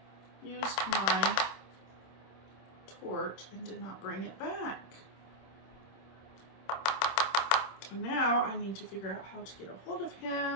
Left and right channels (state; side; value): late; right; 26 ms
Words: used my torch and did not bring it back. And now I need to figure out how to get a hold of